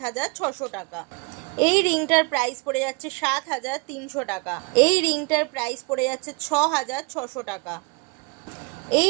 টাকা। এই রিংটার প্রাইস পড়ে যাচ্ছে 7,300 টাকা। এই রিংটার প্রাইস পড়ে যাচ্ছে 6,600 টাকা। এই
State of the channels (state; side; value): quieter; left; 30.8 dB